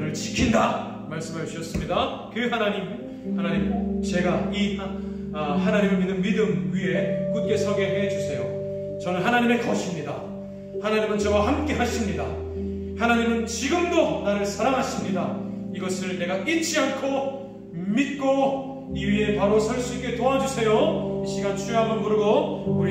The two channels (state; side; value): identical; both; correlation 1.00